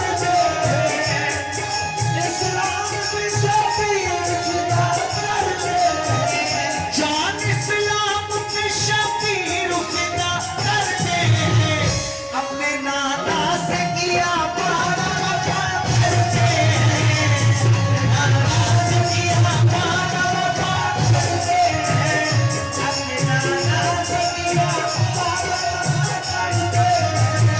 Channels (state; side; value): identical; both; correlation 1.00